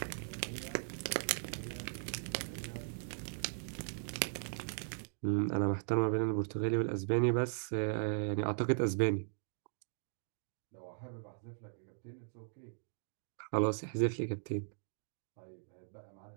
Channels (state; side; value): silent; left; digital silence